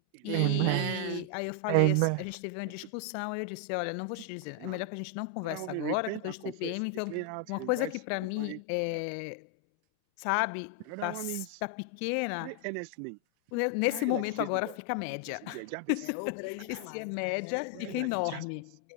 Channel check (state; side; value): different; both; correlation 0.00